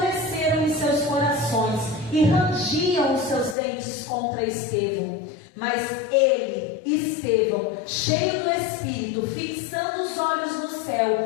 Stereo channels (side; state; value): right; drops out; at 3.6 s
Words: em seus corações e rangiam os seus dentes contra Estevão. Mas ele, Estevão, cheio do Espírito, fixando os olhos no